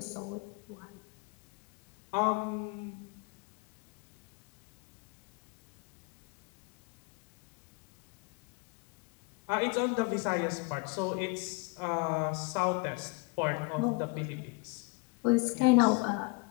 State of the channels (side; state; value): right; quieter; 27.7 dB